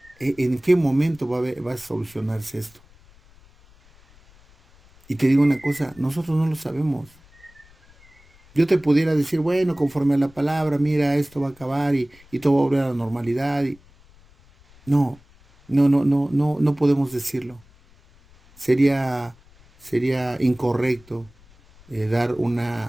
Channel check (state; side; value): noise; left; rumble, 28 dB below the sound